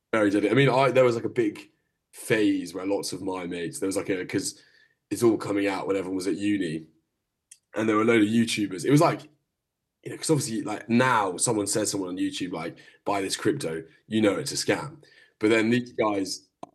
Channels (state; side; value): identical; both; correlation 1.00